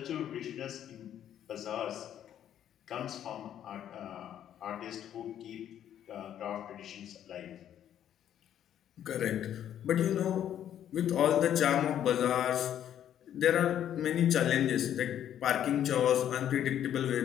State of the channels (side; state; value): right; quieter; 10.4 dB